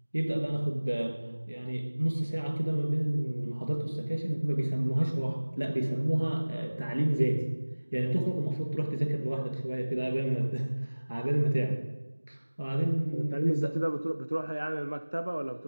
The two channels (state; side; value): inverted; both; correlation -1.00